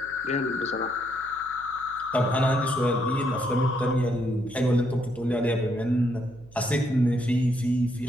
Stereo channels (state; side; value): noise; right; hum, 23 dB below the sound